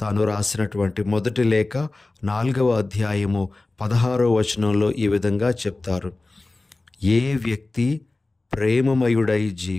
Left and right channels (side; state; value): right; quieter; 3.1 dB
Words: తాను రాసినటువంటి మొదటి లేఖ 4వ అధ్యాయము 16వ వచనంలో ఈ విధంగా చెప్తారు. ఏ వ్యక్తి ప్రేమమయుడై